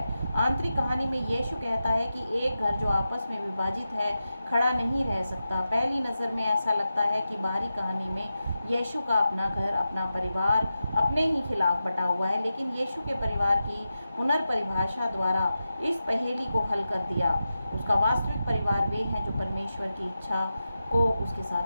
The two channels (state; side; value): inverted; both; correlation -0.91